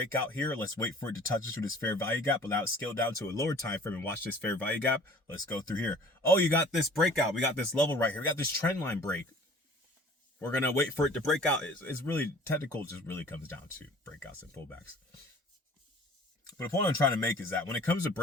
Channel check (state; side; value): normal; both; correlation 0.49